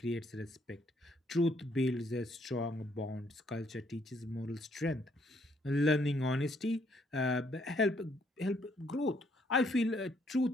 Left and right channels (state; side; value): normal; both; correlation 0.69